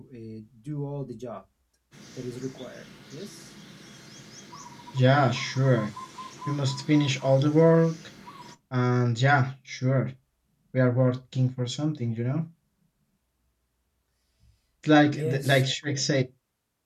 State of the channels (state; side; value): identical; both; correlation 1.00